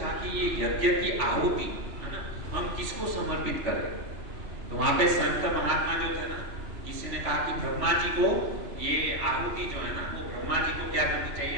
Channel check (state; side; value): late; left; 2.9 ms